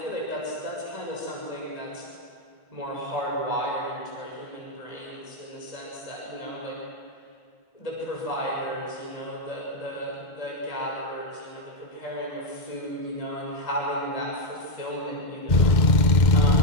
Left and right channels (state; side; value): late; right; 2.0 ms